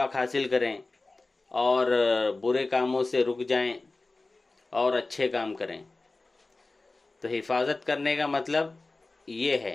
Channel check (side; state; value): right; quieter; 3.3 dB